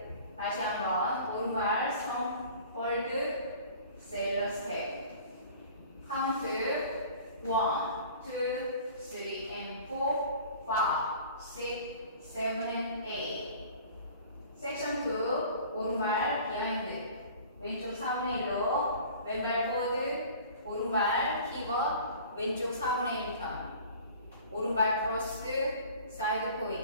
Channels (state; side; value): inverted; both; correlation -0.45